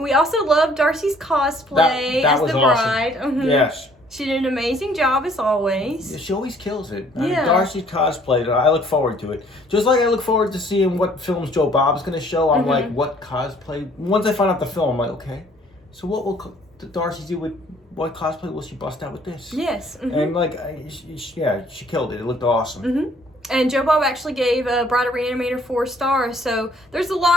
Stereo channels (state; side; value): normal; both; correlation 0.60